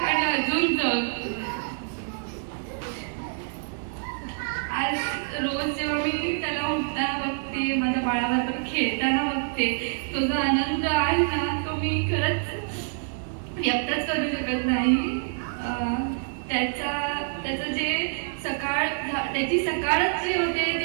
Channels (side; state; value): left; silent; digital silence